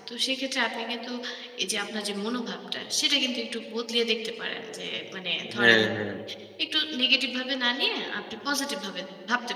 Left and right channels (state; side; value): identical; both; correlation 1.00